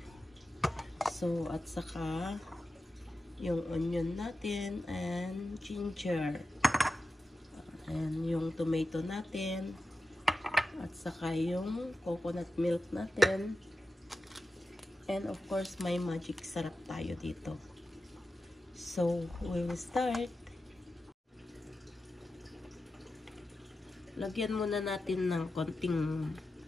So, at saka yung onion natin and ginger. And yung tomato natin. At saka yung coconut milk natin. And of course, may magic sarap tayo dito. So, we will start. Lagyan muna natin ng konting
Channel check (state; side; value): normal; both; correlation 0.91